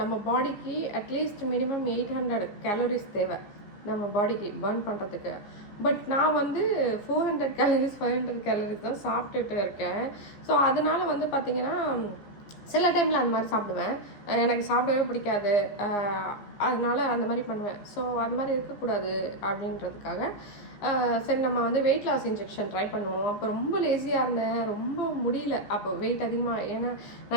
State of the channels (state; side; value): late; right; 15 ms